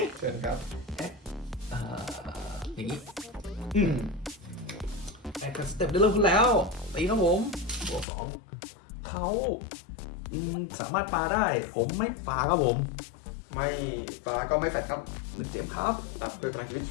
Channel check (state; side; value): drops out; right; at 8.1 s